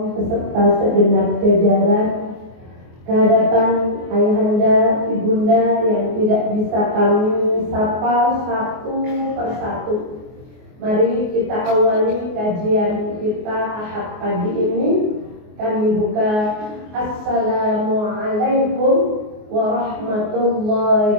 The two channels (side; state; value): left; late; 24 ms